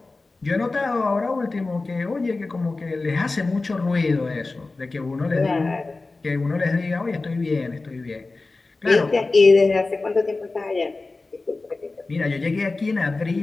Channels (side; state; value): right; quieter; 3.5 dB